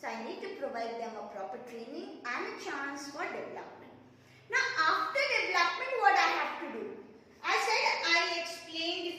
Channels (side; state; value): both; identical; correlation 1.00